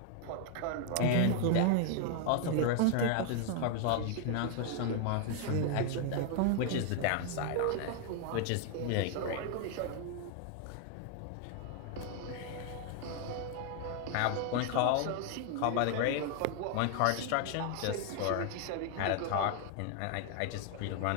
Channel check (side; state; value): both; different; correlation 0.00